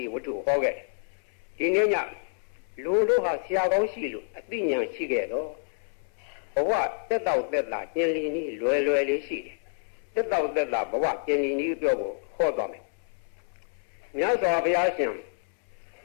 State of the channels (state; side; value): silent; right; 59 dB below the other